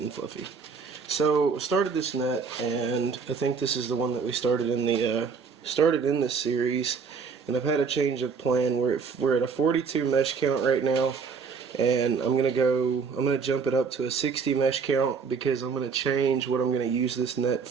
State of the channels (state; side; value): quieter; left; 5.5 dB